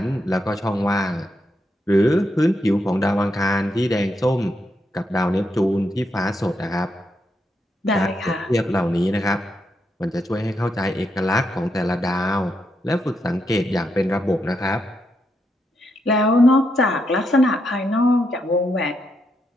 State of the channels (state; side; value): normal; both; correlation 0.81